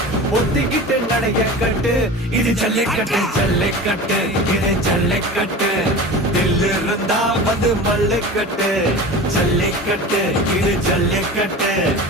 ஒத்திக்கிட்டு நடைய கட்டு இது ஜல்லிக்கட்டு ஜல்லிக்கட்டு இது ஜல்லிக்கட்டு தில்லு இருந்தா வந்து மல்லிக்கட்டு ஜல்லிக்கட்டு இது ஜல்லிக்கட்டு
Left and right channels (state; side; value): normal; both; correlation 0.34